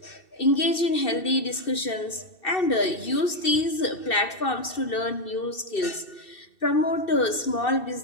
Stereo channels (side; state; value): right; late; 2.6 ms